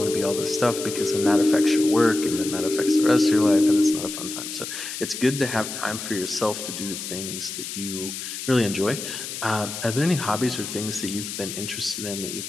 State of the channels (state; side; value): noise; left; hiss, 7 dB below the sound